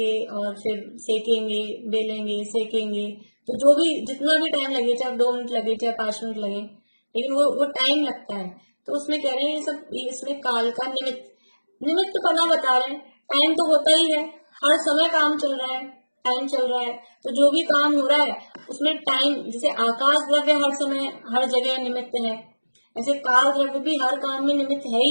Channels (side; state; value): both; inverted; correlation -1.00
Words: और फिर सेकेंगे, बेलेंगे, सेकेंगे, तो जो भी जितना भी टाइम लगे, चाहे 2 मिनट लगे चाहे 5 मिनट लगे, लेकिन वो टाइम लगता है। तो उसमें कह रहे हैं ये सब, इसमें काल का निमित्त पना बता रहे हैं। टाइम तो होता ही है, हर समय काम चल रहा है, टाइम चल रहा है, तो जो भी काम हो रहा है उसमें टाइम, जैसे आकाश द्रव्य हर समय हर जगह निमित्त है, ऐसे काल द्रव्य भी हर काम में निमित्त है